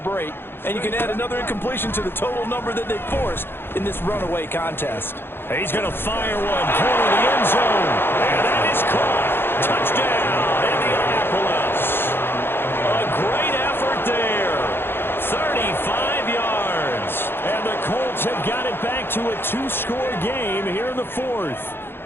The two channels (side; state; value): right; late; 0.11 ms